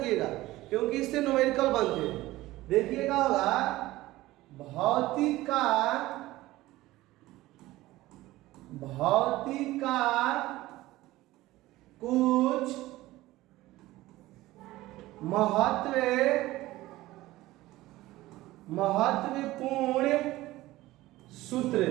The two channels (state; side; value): quieter; left; 17.5 dB